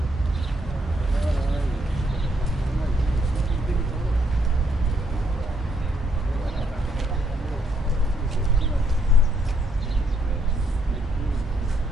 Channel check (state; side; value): normal; both; correlation 0.72